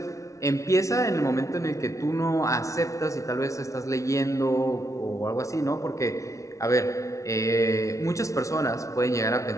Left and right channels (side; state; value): right; late; 0.15 ms